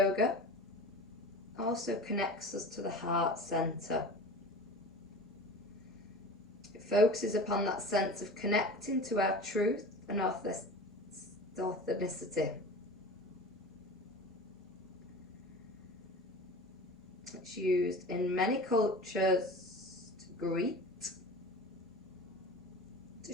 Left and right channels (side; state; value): both; normal; correlation 0.35